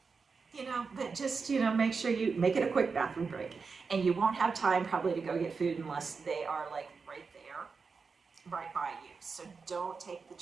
you know, but just, you know, make sure you make it a quick bathroom break. And you won't have time probably to go get food unless they are like right there, right by you. So don't take the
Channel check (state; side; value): quieter; left; 5.0 dB